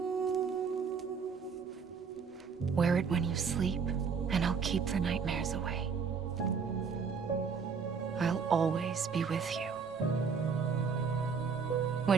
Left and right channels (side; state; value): left; quieter; 5.9 dB